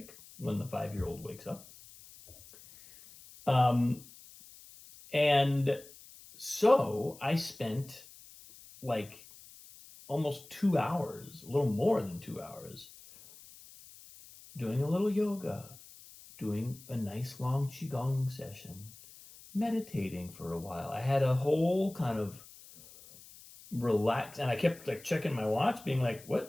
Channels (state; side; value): noise; left; hiss, 20 dB below the sound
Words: when the 5-year-old wakes up. Um, and so I spent like almost 2 hours, a little more than 2 hours, doing a little yoga, doing a nice long qigong session, meditating for a while. I had a whole kind of relax, and I kept like checking my watch, being like,